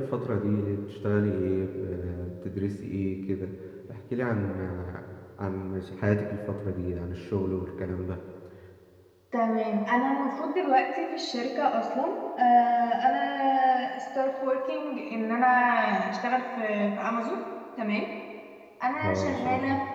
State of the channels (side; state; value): both; identical; correlation 1.00